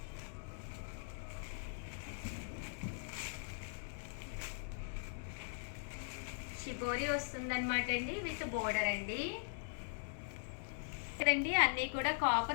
షిబోరి వస్తుందన్నమాట అండి. విత్ బోర్డర్ అండి. ఇక్కడండి అన్నీ కూడా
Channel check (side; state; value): right; silent; digital silence